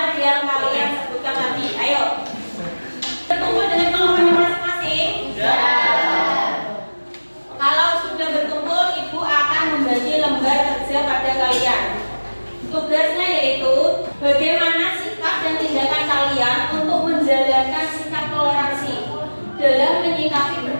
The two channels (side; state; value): both; inverted; correlation -1.00